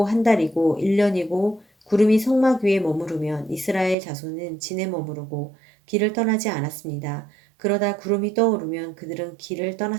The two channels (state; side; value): drops out; left; at 4.0 s